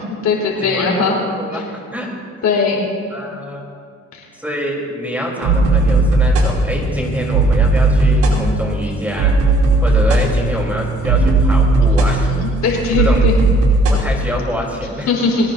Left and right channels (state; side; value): normal; both; correlation 0.57